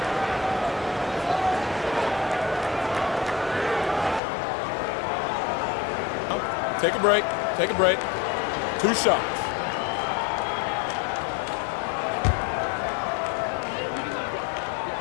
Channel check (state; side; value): drops out; right; at 4.2 s